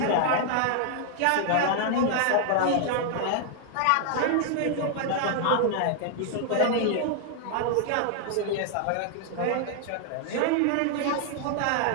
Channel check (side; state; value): both; different; correlation 0.00